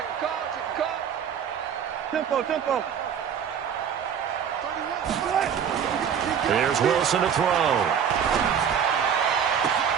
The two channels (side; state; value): left; quieter; 8.0 dB